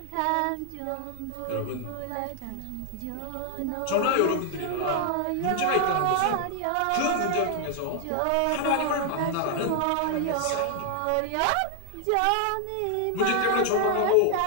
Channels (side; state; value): both; different; correlation 0.00